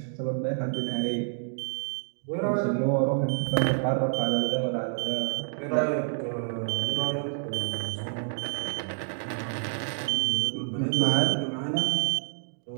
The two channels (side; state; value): left; silent; digital silence